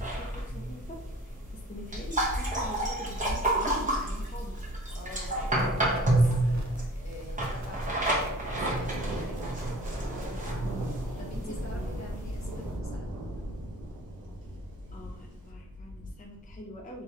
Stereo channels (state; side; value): normal; both; correlation 0.48